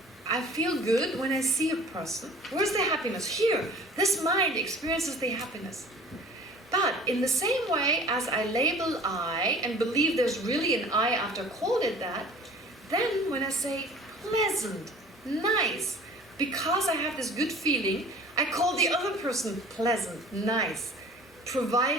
I feel good when I see a person. Where's the happiness? Here. This mind experiences the happiness. But in the same way as I label I and believe there's really an I after I called it that, then when I say pleasant, nice, because I have this good feeling, I call the other person pleasant, nice,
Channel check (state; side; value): normal; both; correlation 0.46